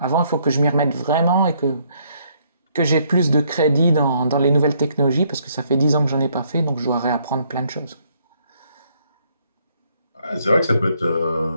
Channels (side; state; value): both; inverted; correlation -0.69